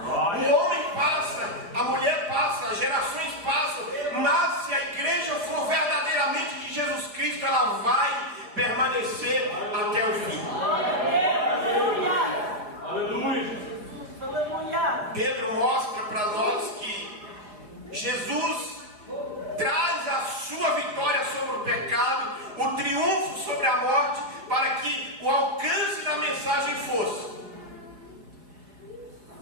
homem passa, a mulher passa, as gerações passam, mas se a igreja for verdadeiramente de Jesus Cristo, ela vai permanecer até o fim. Pedro mostra para nós que Jesus traz a sua vitória sobre o pecado, o triunfo sobre a morte, para que o alcance da mensagem fosse:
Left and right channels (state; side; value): late; left; 5.4 ms